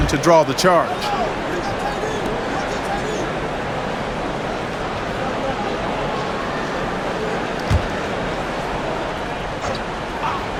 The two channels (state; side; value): identical; both; correlation 1.00